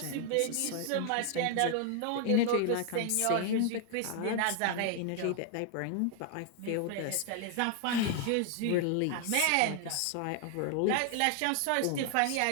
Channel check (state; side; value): different; both; correlation 0.00